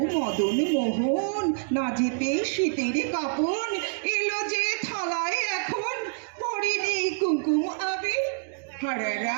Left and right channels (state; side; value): silent; left; digital silence